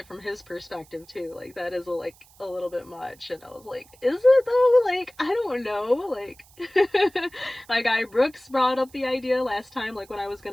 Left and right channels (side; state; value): right; noise; hiss, 27 dB below the sound